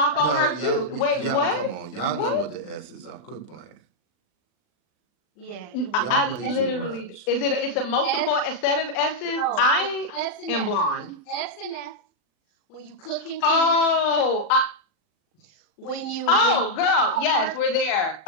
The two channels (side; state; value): right; late; 39 ms